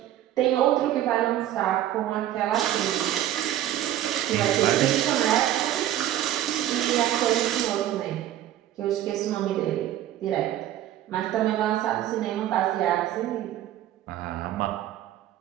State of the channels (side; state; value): left; quieter; 12.6 dB